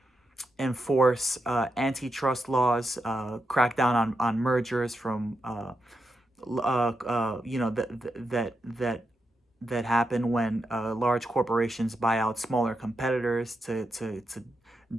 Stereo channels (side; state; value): both; normal; correlation 0.85